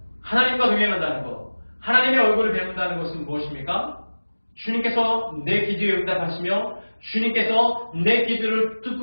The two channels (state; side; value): inverted; both; correlation -1.00